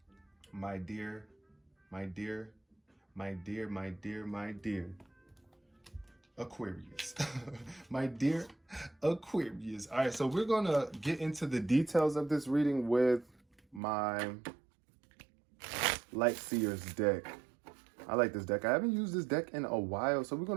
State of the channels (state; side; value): drops out; left; at 13.8 s